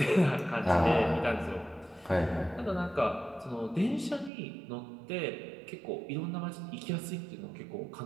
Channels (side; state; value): left; drops out; at 4.3 s